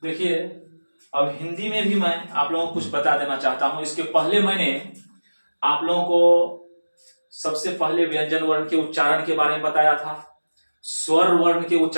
देखिए, अब हिंदी में भी मैं आप लोगों को कुछ बता देना चाहता हूं। इसके पहले मैंने आप लोगों को सबसे पहले व्यंजन वर्ण के उच्चारण के बारे में बताया था, स्वर वर्ण के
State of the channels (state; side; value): inverted; both; correlation -1.00